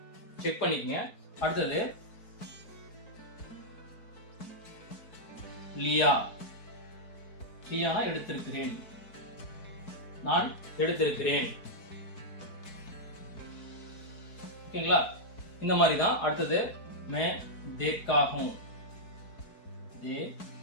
செக் பண்ணிக்கங்க. அடுத்தது லியா. லியானா எடுத்திருக்கிறேன், நான் எடுத்திருக்கிறேன். ஓகேங்களா? இந்த மாதிரி தான். அடுத்தது मैं देखा हूं,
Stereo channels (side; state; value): right; late; 4.6 ms